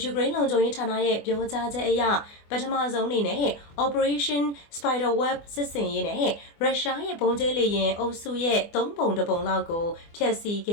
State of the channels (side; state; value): right; late; 24 ms